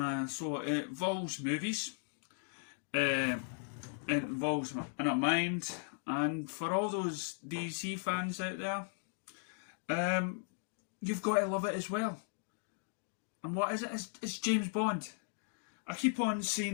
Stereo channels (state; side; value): silent; right; digital silence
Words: So it involves movies, it involves in a mind, and for all those DC fans out there, you've got to love it as well. And what is it? It's James Bond. I keep on